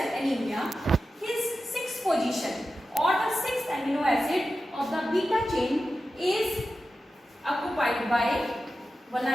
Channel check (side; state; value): both; normal; correlation 0.93